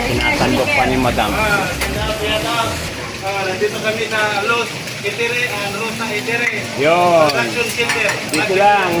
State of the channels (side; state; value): both; identical; correlation 1.00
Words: Sinasandok pa ni madam. Nandito kami sa Los Itere and Rosa Itere. Yun. Production Center. Dito